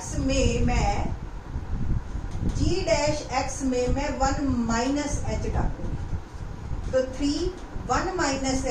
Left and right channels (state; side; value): identical; both; correlation 1.00